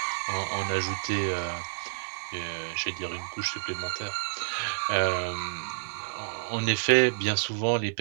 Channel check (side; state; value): left; silent; digital silence